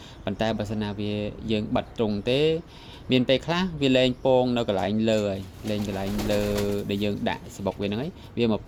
ប៉ុន្តែបើសិនណាវាយើងបិទត្រង់ទេមានពេលខ្លះវាលែងពងនៅកន្លែងលើហើយលែងកន្លែងលើដែលយើងដាក់សបុកវាហ្នឹងហើយវាមក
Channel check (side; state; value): both; identical; correlation 1.00